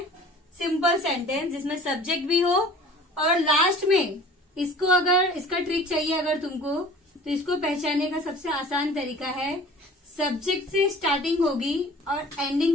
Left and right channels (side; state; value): both; normal; correlation 0.45